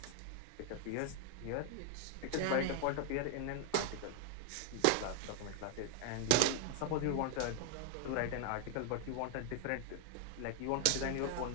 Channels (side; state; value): both; different; correlation 0.00